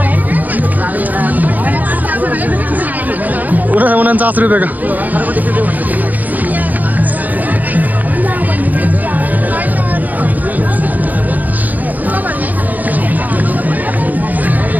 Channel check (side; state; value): left; late; 0.082 ms